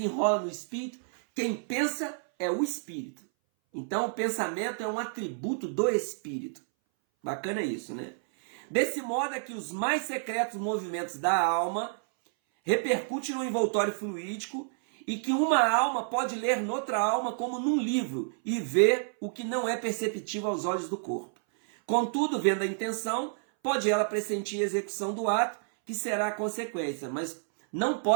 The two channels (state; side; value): silent; left; 58 dB below the other